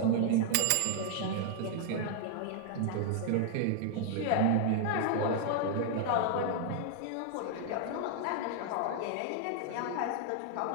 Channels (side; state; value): both; different; correlation 0.00